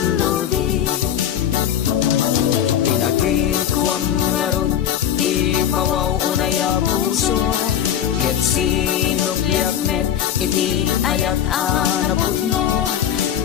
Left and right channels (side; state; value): right; quieter; 9.7 dB